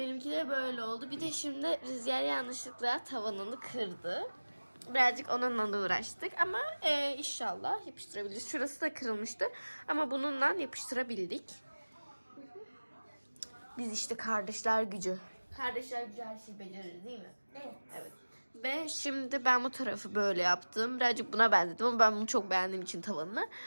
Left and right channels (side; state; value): both; inverted; correlation -1.00